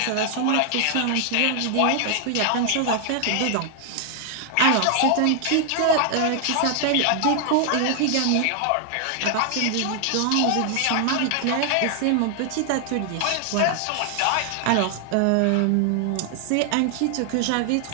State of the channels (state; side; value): different; both; correlation 0.00